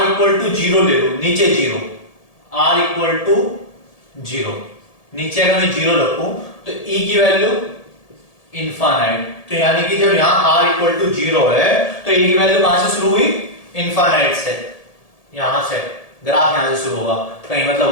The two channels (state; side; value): late; right; 1.7 ms